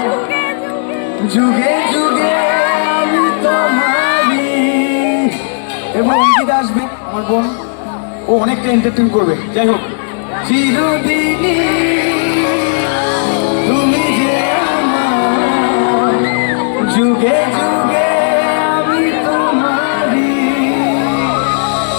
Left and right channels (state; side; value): silent; right; digital silence